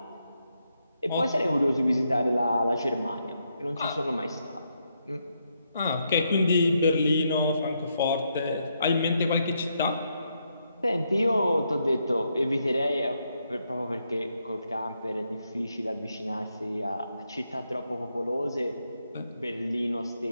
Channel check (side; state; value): both; inverted; correlation -0.79